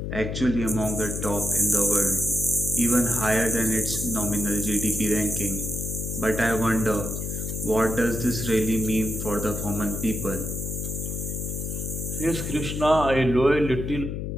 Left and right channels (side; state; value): left; noise; hum, 4 dB below the sound